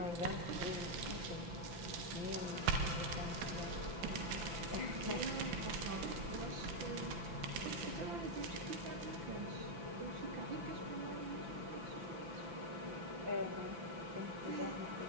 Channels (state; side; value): late; left; 5.9 ms